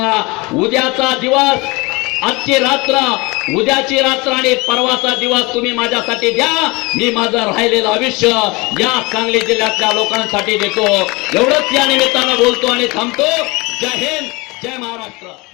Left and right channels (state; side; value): quieter; right; 25.1 dB